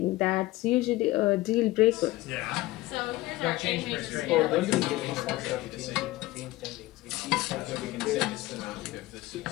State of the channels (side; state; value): right; quieter; 18.4 dB